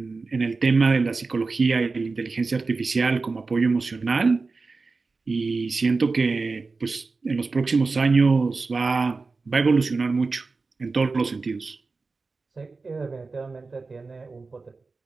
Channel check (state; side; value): quieter; left; 4.0 dB